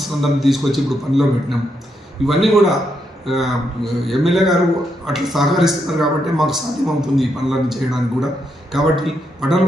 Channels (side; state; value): both; normal; correlation 0.80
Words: అందరిని తీసుకొచ్చి ఇప్పుడు పనిలో పెట్టినాం. ఇవన్నీ కూడా ఎమ్మెల్యే గారు అట్లా సహకరిస్తున్నారు కాబట్టి మాకు సాధ్యమవుతుంది ఈ పనులన్నీ చేయడానికి కూడా. కాబట్టి పట్టణ